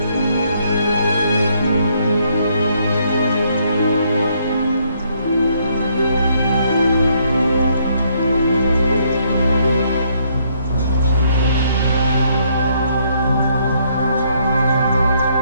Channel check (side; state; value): both; inverted; correlation -0.70